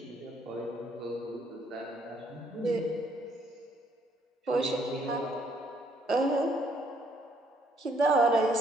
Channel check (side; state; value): both; normal; correlation 0.68